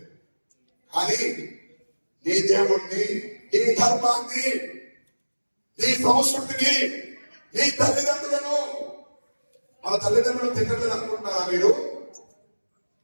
కానీ నీ దేవుణ్ణి, నీ ధర్మాన్ని, నీ సంస్కృతిని, నీ తల్లిదండ్రులను, మన తల్లిదండ్రులు తిట్టలేదు అనుకుంటారా మీరు?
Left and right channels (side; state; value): both; inverted; correlation -1.00